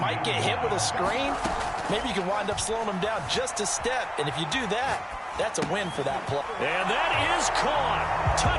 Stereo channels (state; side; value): identical; both; correlation 1.00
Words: get hit with a screen. Maybe you can wind up slowing them down just a step. And if you do that, that's a win for that play. And that is caught.